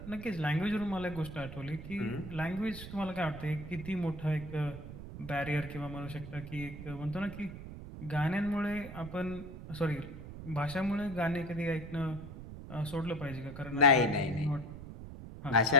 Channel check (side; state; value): right; noise; rumble, 11 dB below the sound